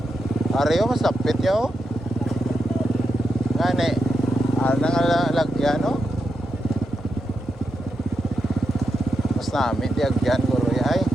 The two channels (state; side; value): normal; both; correlation 0.86